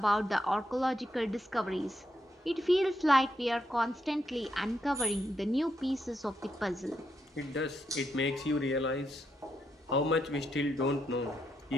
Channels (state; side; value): normal; both; correlation 0.81